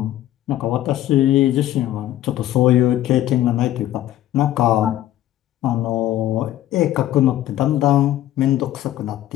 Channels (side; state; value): right; quieter; 13.4 dB